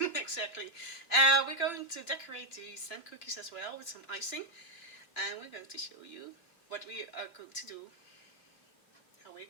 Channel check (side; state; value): right; late; 2.9 ms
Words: Exactly. We're going to decorate the sand cookies as well with some icing. And we're going to show you what we are going to do, how we're